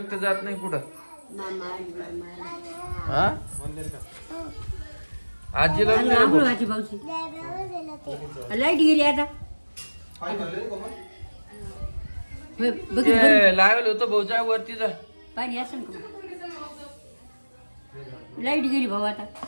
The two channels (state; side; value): inverted; both; correlation -1.00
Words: जात नाही कुठं. हा आजीला बी नाही रे भाऊ. लाईट गेली आता. ते लावेल होतं भाऊच्या वरती जा. पाणी असं का. लाईट गेली भाऊ आता